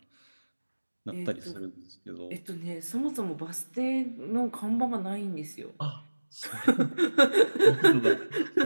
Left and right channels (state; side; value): inverted; both; correlation -1.00